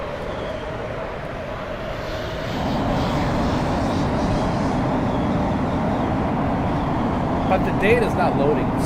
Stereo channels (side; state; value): both; identical; correlation 1.00